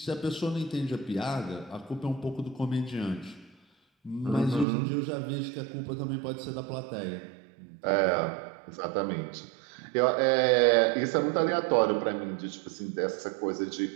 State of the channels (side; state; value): left; drops out; at 4.7 s